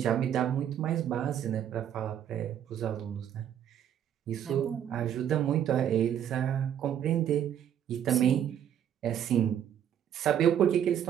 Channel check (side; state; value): left; quieter; 9.7 dB